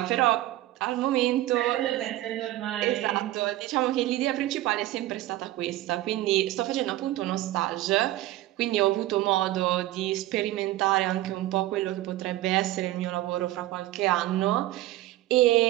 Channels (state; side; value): quieter; left; 15.8 dB